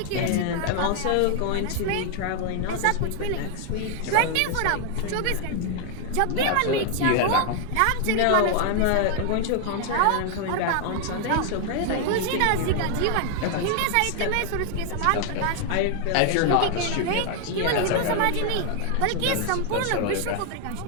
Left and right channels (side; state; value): both; different; correlation 0.00